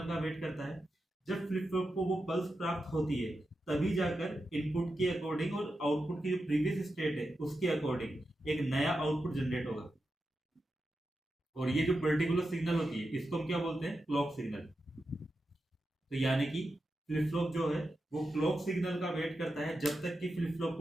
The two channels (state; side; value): normal; both; correlation 0.89